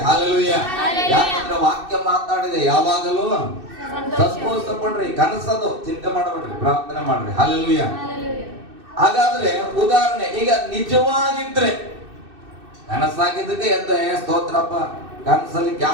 ಹಲ್ಲೆಲೂಯ. ಯಾಕಂದ್ರೆ ವಾಕ್ಯ ಮಾತಾಡಿದೆ, ಯಾವಾಗಲೂ ಸಂತೋಷ ಪಡ್ರಿ. ಕನಸದು ಚಿಂತೆ ಮಾಡಬೇಡ್ರಿ, ಪ್ರಾರ್ಥನೆ ಮಾಡ್ರಿ. ಹಲ್ಲೆಲೂಯ. ಹಾಗಾದ್ರೆ ಉದಾಹರಣೆ, ಈಗ ನಿಜವಾಗಿದ್ರೆ ಕನಸಾಗಿದ್ದಕ್ಕೆ ಎದ್ದ ಸ್ತೋತ್ರಪ್ಪ, ಕನಸಲ್ಲಿ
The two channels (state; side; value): late; left; 2.6 ms